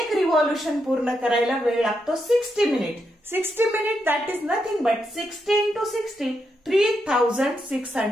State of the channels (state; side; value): normal; both; correlation 0.82